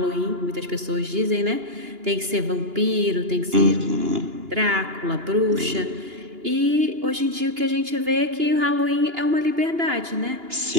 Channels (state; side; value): late; left; 2.9 ms